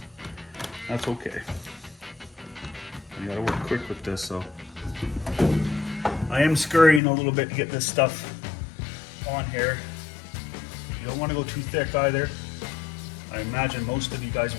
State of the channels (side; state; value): right; drops out; at 7.0 s